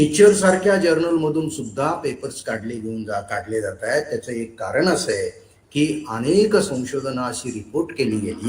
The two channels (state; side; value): identical; both; correlation 1.00